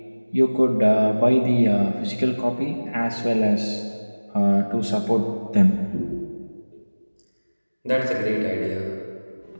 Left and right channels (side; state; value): both; inverted; correlation -1.00